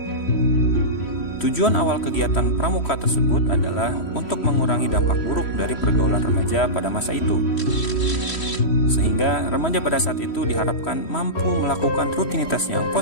Tujuan awal kegiatan pramuka tersebut adalah untuk mengurangi dampak buruk dari pergaulan remaja pada masa itu. Sehingga remaja pada saat itu diharapkan mampu melakukan rutinitas yang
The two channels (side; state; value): right; late; 3.1 ms